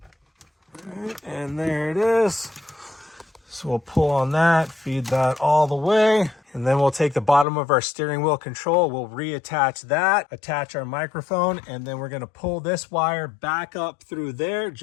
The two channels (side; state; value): right; drops out; at 7.5 s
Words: And there it is. So we'll pull on that, feed that all the way. And then we'll take the bottom of our steering wheel control, we'll reattach that, attach our microphone, and then we're going to pull this wire back up through there,